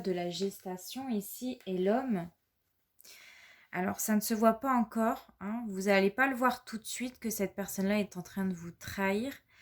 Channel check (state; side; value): identical; both; correlation 1.00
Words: la gestation ici et l'homme. Alors, ça ne se voit pas encore, hein. Vous n'allez pas le voir tout de suite que cette personne-là est en train de vous trahir.